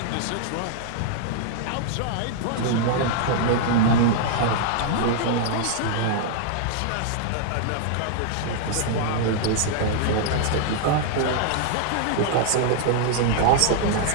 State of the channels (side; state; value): both; different; correlation -0.01